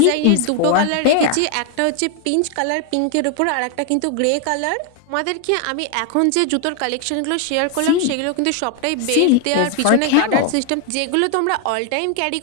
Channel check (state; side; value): different; both; correlation 0.00